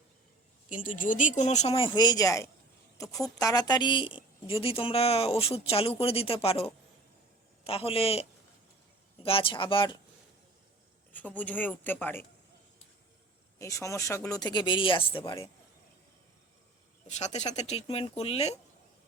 কিন্তু যদি কোনো সময় হয়ে যায়, তো খুব তাড়াতাড়ি যদি তোমরা ওষুধ চালু করে দিতে পারো, তাহলে গাছ আবার সবুজ হয়ে উঠতে পারে, এই সমস্যাগুলো থেকে বেরিয়ে আসতে পারে। সাথে সাথে ট্রিটমেন্ট করলে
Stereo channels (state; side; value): quieter; left; 3.0 dB